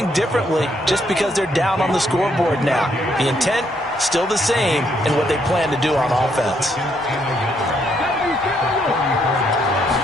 differently just because they're down on the scoreboard now. The intent, still the same in what they plan to do on offense.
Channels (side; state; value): both; normal; correlation 0.73